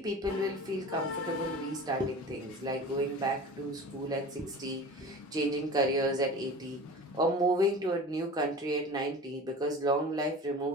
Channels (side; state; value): both; normal; correlation 0.37